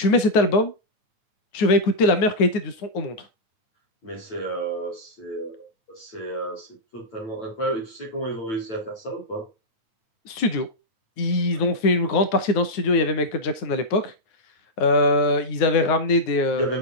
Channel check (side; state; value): right; late; 9.6 ms